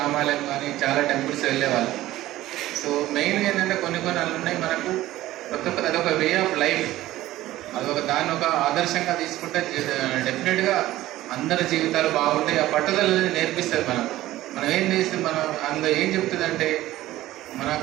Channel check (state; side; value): quieter; left; 15.6 dB